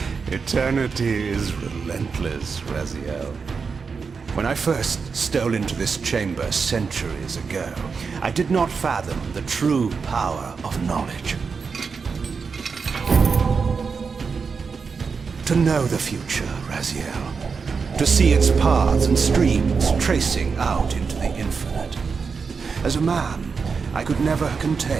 Eternity is relentless, Raziel. When I first stole into this chamber centuries ago, I did not fathom the true power of knowledge. To know the future, Raziel. To see its paths and streams tracing out into the infinite. As a man, I could never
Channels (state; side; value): quieter; left; 5.3 dB